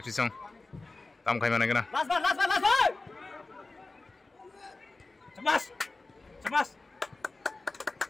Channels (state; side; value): quieter; right; 3.4 dB